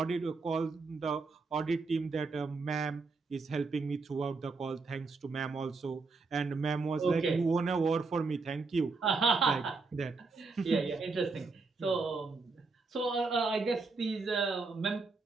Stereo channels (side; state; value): left; quieter; 4.1 dB